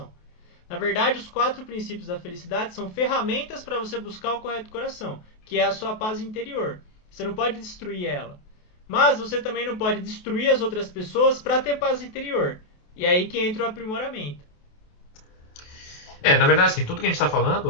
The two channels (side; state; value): right; late; 28 ms